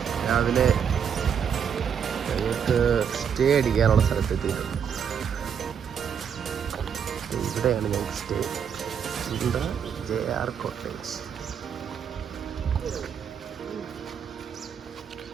രാവിലെ ഞങ്ങൾക്ക് സ്റ്റേ അടിക്കാനുള്ള സ്ഥലത്തെത്തിയിട്ടുണ്ട്. ഇവിടെയാണ് ഞങ്ങൾക്ക് സ്റ്റേ. ഇവിടെ JR കോട്ടേജ്.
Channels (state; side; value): quieter; left; 7.6 dB